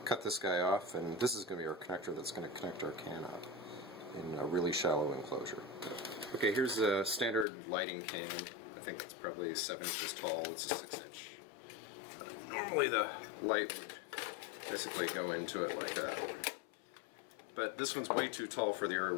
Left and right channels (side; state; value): right; drops out; at 7.5 s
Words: cut this guy off, and this is going to be our connector that's going to connect our can up in a really shallow enclosure. Okay, here's a standard lighting can. I think it's probably 7 inches tall. It's a 6-inch. Normally the light would basically go into it like that. But this one's way too tall for the area